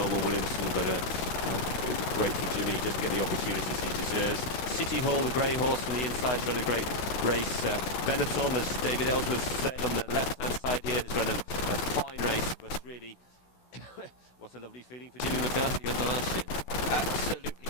Williamson, but great for Jimmy. He doesn't get the opportunities he deserves. City Hall, the grey horse on the inside, has run a great race. Benetton, as David Ellsworth said, on the left-hand side here, has run a fine race, but really... what a lovely feeling for Jimmy McCarthy on the last year. Absolutely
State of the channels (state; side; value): late; right; 16 ms